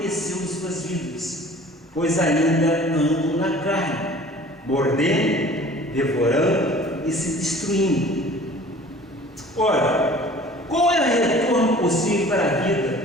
em suas vidas, pois ainda andam na carne, mordendo, devorando e se destruindo. Ora, qual é o retorno possível para a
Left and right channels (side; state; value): both; normal; correlation 0.47